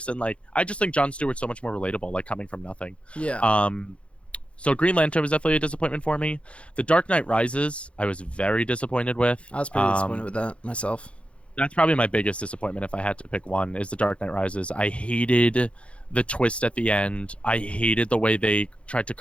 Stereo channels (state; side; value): late; right; 0.060 ms